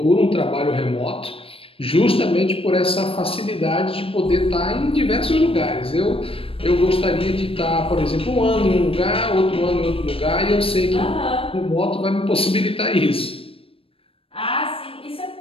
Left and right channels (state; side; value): late; right; 0.27 ms